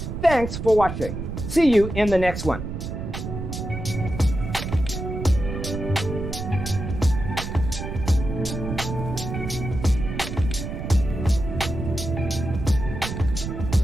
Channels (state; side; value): noise; right; rumble, 6 dB below the sound